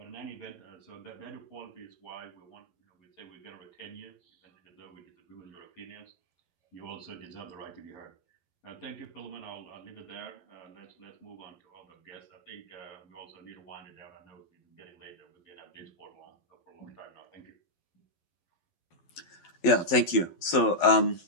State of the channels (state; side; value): late; right; 11 ms